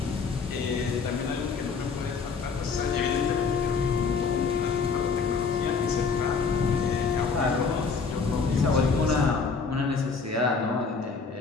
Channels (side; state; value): right; quieter; 5.1 dB